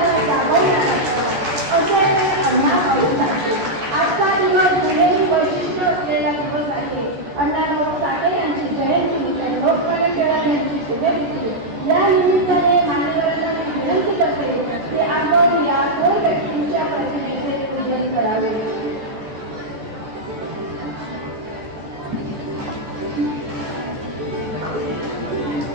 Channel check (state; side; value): late; left; 14 ms